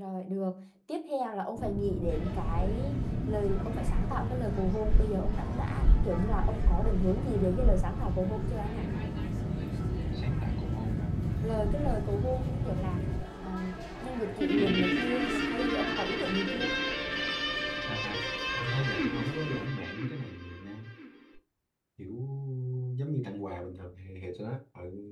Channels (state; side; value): identical; both; correlation 1.00